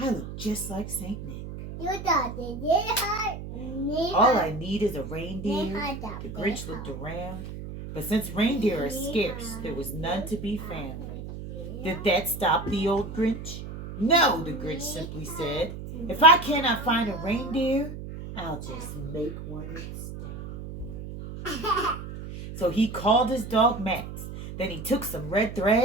look just like Saint Nick. All I need is a reindeer. The Grinch looked around, but since reindeer are scarce, there was none to be found. Did that stop the old Grinch? No, the Grinch simply said. If I cannot find a reindeer, I'll just make one instead. So he called his dog Max. Then he took some red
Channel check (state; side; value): noise; right; hum, 9 dB below the sound